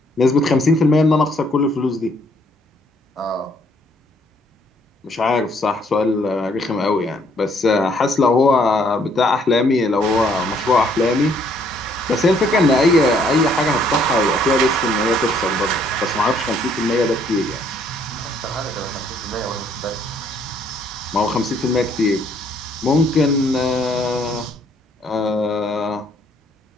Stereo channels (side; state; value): both; normal; correlation 0.66